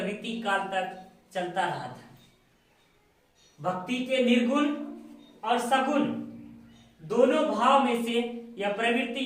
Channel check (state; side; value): identical; both; correlation 1.00